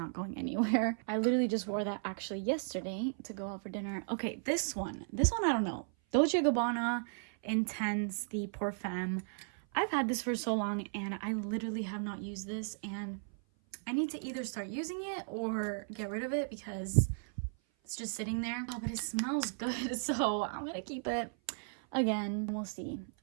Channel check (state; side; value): silent; left; 54 dB below the other